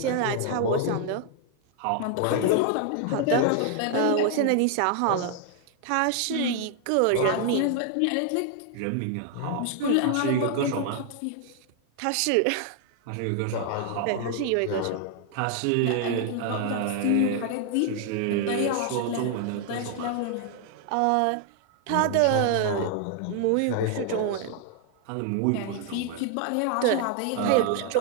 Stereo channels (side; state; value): both; different; correlation 0.00